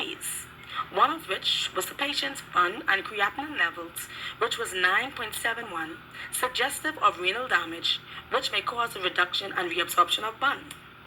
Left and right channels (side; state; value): both; identical; correlation 1.00